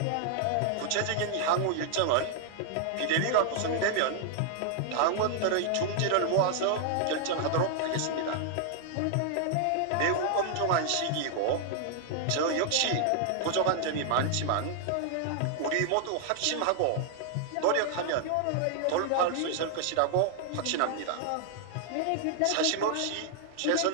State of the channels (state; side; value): different; both; correlation 0.00